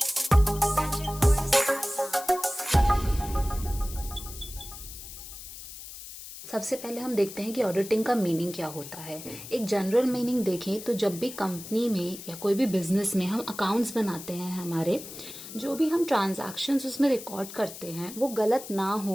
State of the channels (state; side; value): noise; left; hiss, 13 dB below the sound